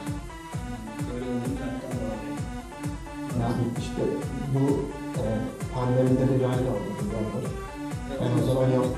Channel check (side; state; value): both; identical; correlation 1.00